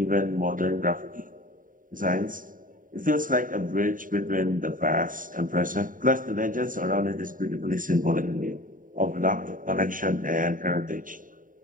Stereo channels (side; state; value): left; late; 0.39 ms